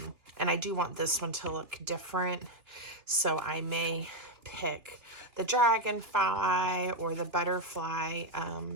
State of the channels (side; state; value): left; late; 2.8 ms